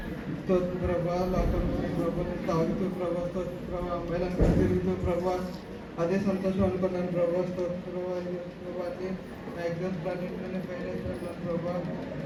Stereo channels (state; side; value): identical; both; correlation 1.00